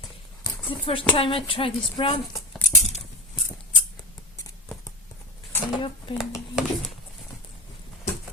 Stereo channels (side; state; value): both; normal; correlation 0.25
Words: the first time I try this brand. I open it.